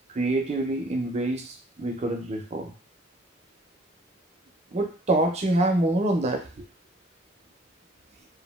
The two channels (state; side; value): normal; both; correlation 0.57